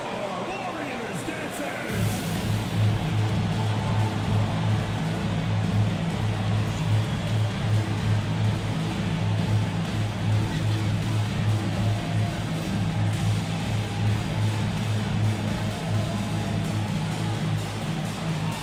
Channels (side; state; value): both; identical; correlation 1.00